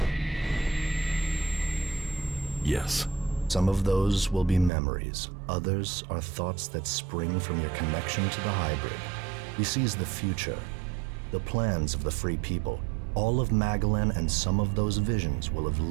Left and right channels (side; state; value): left; drops out; at 4.7 s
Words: Yes. Some of those will be memories. Others are thoughts that spring from your connection to the hybrid. He sees the future, the plans of the free people. All of Magalan and some of those visions will have